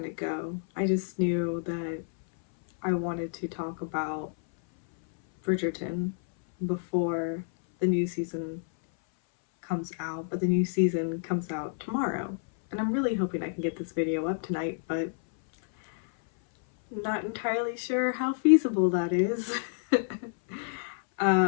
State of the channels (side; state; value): right; silent; 58 dB below the other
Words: go. I just knew that I wanted to talk about Bridgerton before the new season comes out, but the new season comes out tomorrow. And I'm really hoping I can get this video up tonight, but not entirely sure how feasible that is.